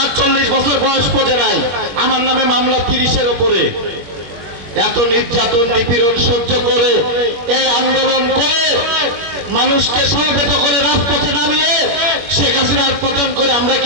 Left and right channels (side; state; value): left; late; 21 ms